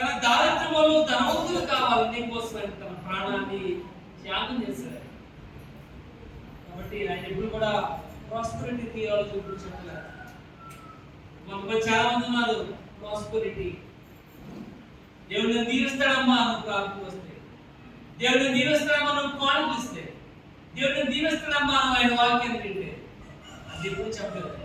దారిద్ర్యం వల్ల ధనవంతులు కావాలి నీకోసం తన ప్రాణాన్ని త్యాగం చేశాడు. కాబట్టి ఆయన ఎప్పుడు కూడా ప్రాస్పరిటీ థియాలజీ గురించి చెప్పలేదు. మనకు చాలా మంది ఉన్నారు ప్రాస్పరిటీ. దేవుడిని దీవిస్తాడమ్మా నువ్వు ప్రార్థన వస్తే, దేవుడిని దీవిస్తాడమ్మా నువ్వు కానుకిస్తే, దేవుడిని దీవిస్తాడమ్మా నువ్వు ఆయన వాక్యాన్ని వింటే. అది ఎప్పుడు చెప్పలేదు.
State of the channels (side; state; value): both; identical; correlation 1.00